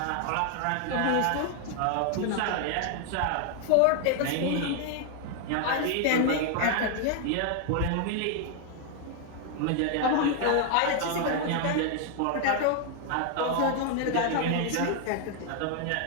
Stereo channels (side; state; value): both; different; correlation 0.00